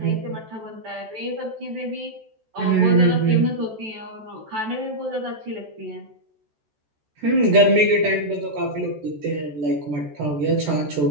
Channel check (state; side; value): late; left; 14 ms